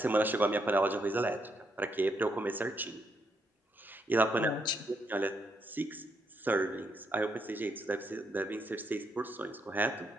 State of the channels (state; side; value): normal; both; correlation 0.77